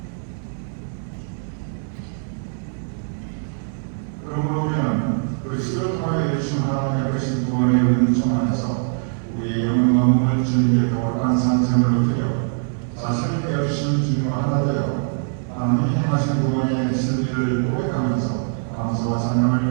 그러므로 우리는 그리스도를 통하여 주신 하나님의 크신 구원의 은총 안에서 우리의 영혼과 몸을 주님께 거룩한 산제물로 드려 자신을 깨우치신 주님과 하나 되어 하나님이 행하신 구원의 진리를 고백하면서 감사와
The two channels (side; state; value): left; silent; 62 dB below the other